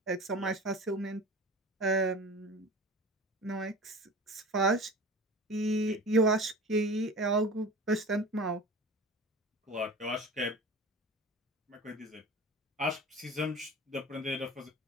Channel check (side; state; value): both; normal; correlation 0.37